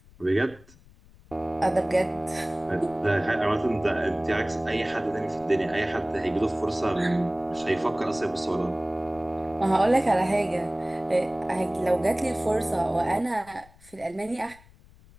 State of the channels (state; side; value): noise; left; rumble, 25 dB below the sound